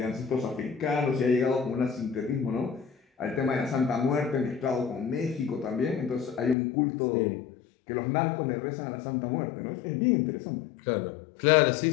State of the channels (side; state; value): right; drops out; at 6.6 s